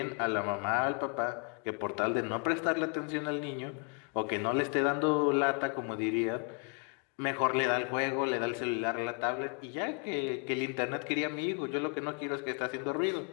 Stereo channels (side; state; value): right; quieter; 37.9 dB